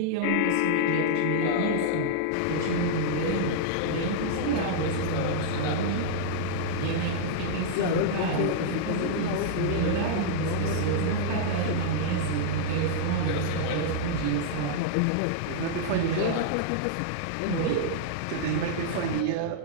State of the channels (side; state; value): both; different; correlation -0.01